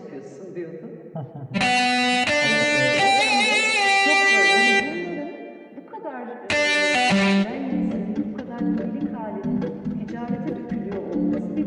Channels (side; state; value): both; identical; correlation 1.00